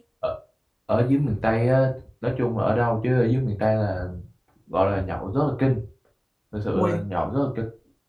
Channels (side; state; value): both; identical; correlation 1.00